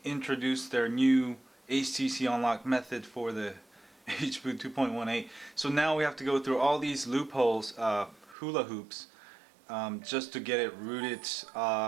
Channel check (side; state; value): left; drops out; at 8.3 s